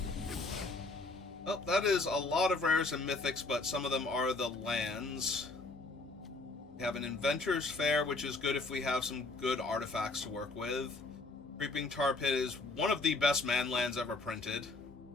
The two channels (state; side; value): quieter; right; 3.3 dB